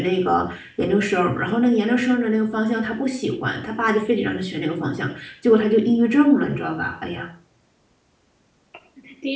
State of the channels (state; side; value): identical; both; correlation 1.00